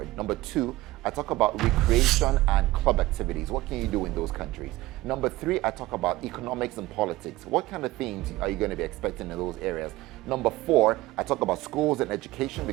Number 2, I talk about recreation and club activities. What can you do in those countries? Number 3, I talk about economics and politics. What kind of things are you going to be expecting in those areas? Number 4, I talk about schools and education,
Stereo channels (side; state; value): left; quieter; 18.3 dB